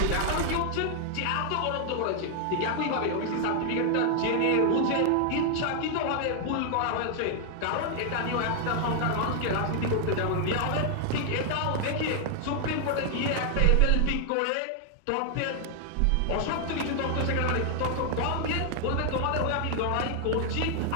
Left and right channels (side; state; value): both; different; correlation 0.00